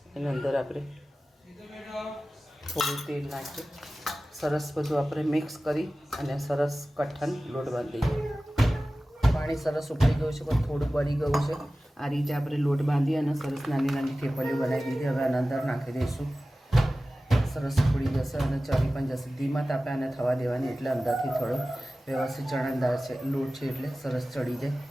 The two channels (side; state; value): both; normal; correlation 0.96